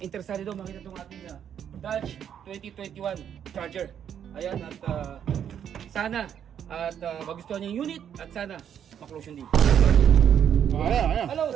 daw makita itong ating Dodge 2021 Charger. Ayan, at sana at magustuhan niya yung unit at sana maklose yung deal. Ayan. Hello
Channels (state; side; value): quieter; left; 8.9 dB